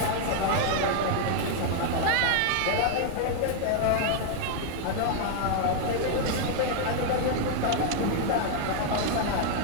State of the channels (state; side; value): different; both; correlation 0.00